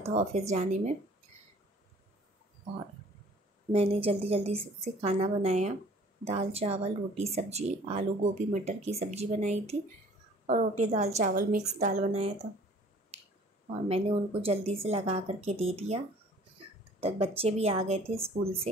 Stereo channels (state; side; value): normal; both; correlation 0.52